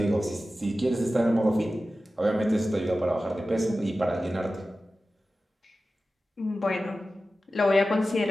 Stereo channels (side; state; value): both; normal; correlation 0.94